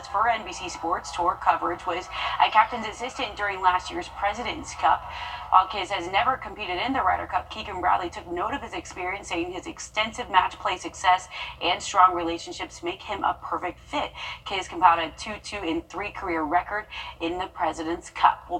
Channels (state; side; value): identical; both; correlation 1.00